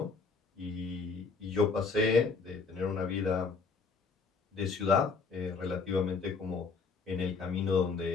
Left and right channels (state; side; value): quieter; right; 4.7 dB